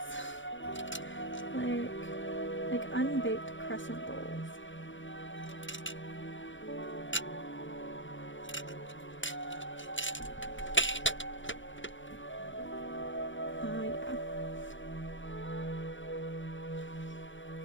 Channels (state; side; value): late; right; 0.56 ms